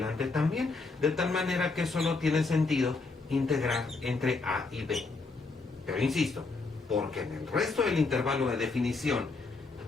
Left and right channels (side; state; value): right; quieter; 3.8 dB